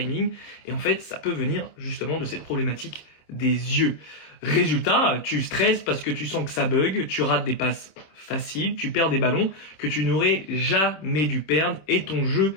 Et en fait, ça peut venir justement de cette problématique des yeux. Résultat, tu stresses parce que tu sens que ça bug, tu rates des passes faciles, tu perds des ballons que tu n'aurais jamais dû perdre et ton jeu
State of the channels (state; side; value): late; right; 26 ms